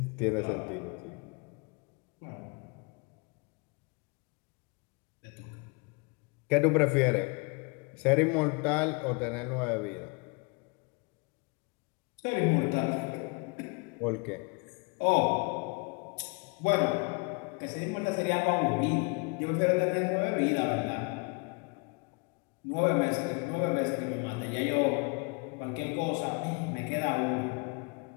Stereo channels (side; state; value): right; quieter; 30.5 dB